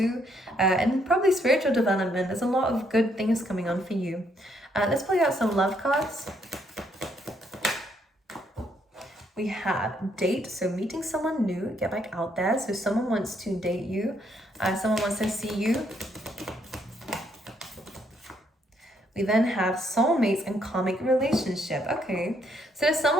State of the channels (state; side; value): normal; both; correlation 0.72